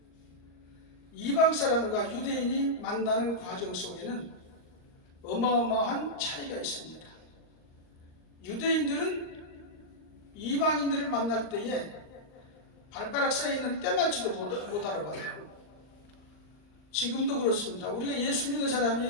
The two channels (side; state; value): right; late; 39 ms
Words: 이방 사람과 유대인이 만나는 과정 속에는 어마어마한 차이가 있습니다. 유대인들은 이방인들을 만날 때에 발가락 사이에 있는 때맞지도 못 알아봐요. 지금도 그렇습니다. 우리가 예수 믿는